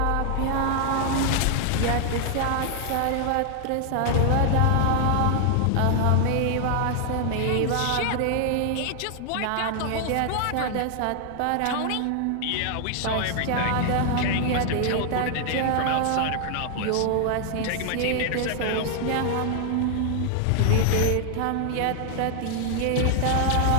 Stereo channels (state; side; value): different; both; correlation 0.00